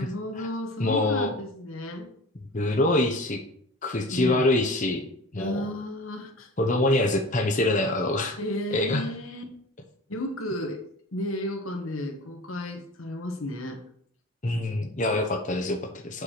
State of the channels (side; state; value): both; normal; correlation 0.38